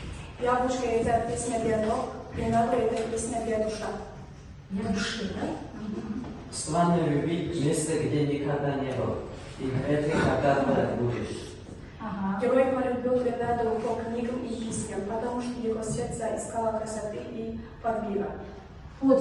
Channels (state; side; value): identical; both; correlation 1.00